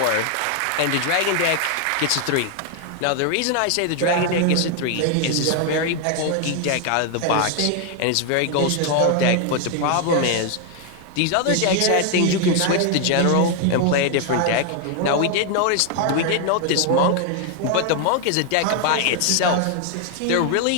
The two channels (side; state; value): both; different; correlation 0.00